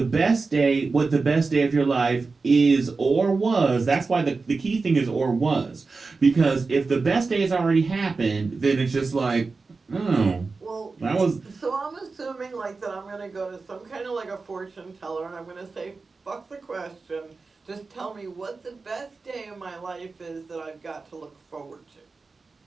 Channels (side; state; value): left; quieter; 4.1 dB